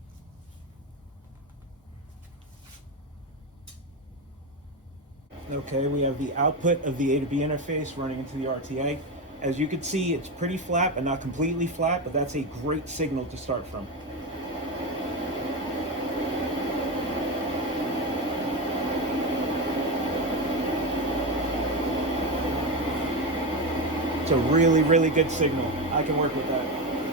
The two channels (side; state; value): both; normal; correlation 0.16